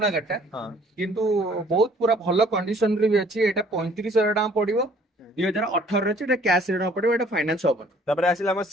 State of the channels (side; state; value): both; normal; correlation 0.57